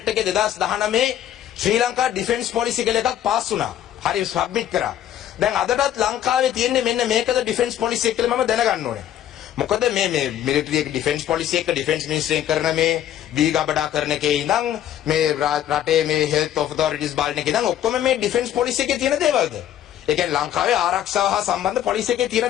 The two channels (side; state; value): right; quieter; 11.3 dB